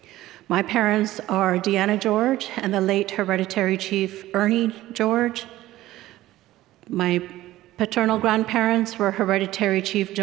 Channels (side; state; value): left; quieter; 15.6 dB